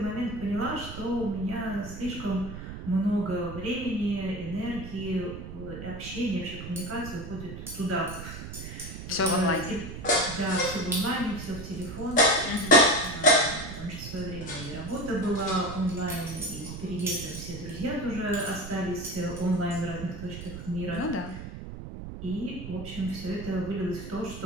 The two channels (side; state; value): right; noise; rumble, 9 dB below the sound